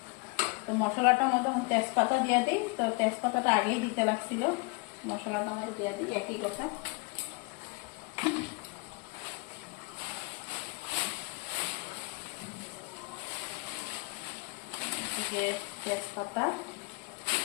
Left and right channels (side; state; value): right; quieter; 30.2 dB